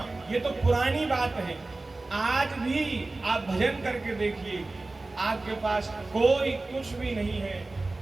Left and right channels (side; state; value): left; quieter; 3.2 dB